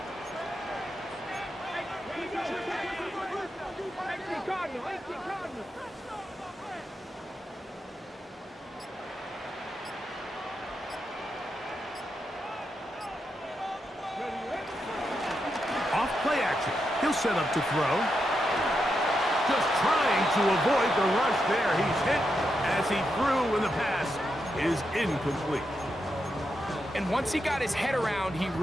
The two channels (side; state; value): both; normal; correlation 0.85